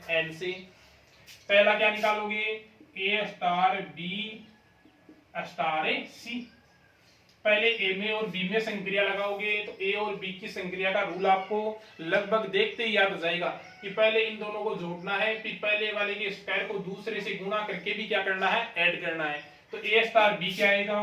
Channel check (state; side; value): identical; both; correlation 1.00